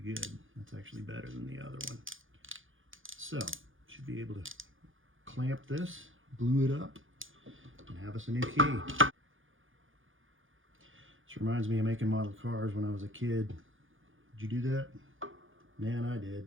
good. That's actually better than the other one. So, should be able to clamp this, glue it up, and have us a new key. This reminds me of making model cars when I was a kid. Did you do that? Man, I did.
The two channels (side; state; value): left; late; 0.58 ms